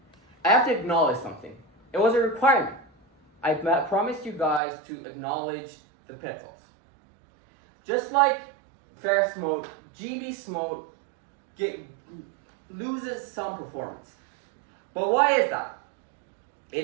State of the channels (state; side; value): drops out; left; at 4.6 s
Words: I have to acknowledge something. It was a requirement. I promised you guys to acknowledge the pitfalls. Just like FAIR-SMOTE, GB-SMOTE loses some performance. But why is that?